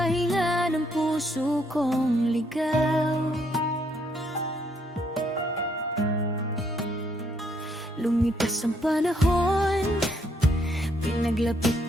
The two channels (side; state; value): both; normal; correlation 0.71